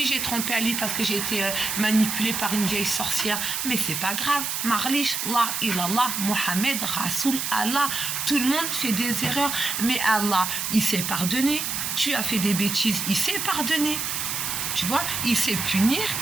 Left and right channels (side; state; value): right; noise; hiss, 2 dB below the sound